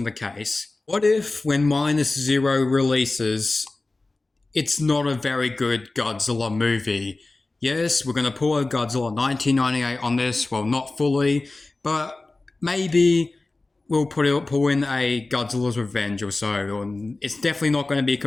the case? What if when Minus Zero releases, it's not a very good Godzilla movie? Yes, we're going to pull a Godzilla 1998 on this, well, not fully, but maybe we'll pull in a Godzilla's Revenge or so. It's definitely not going to be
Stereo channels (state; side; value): quieter; right; 3.2 dB